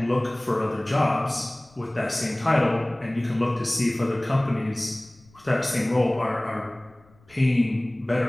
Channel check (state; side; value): noise; left; rumble, 30 dB below the sound